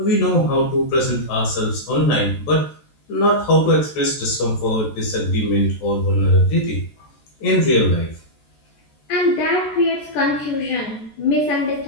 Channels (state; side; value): late; right; 14 ms